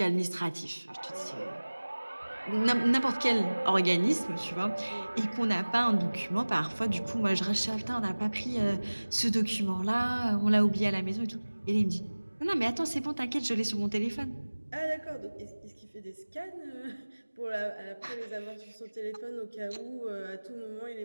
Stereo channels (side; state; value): both; inverted; correlation -1.00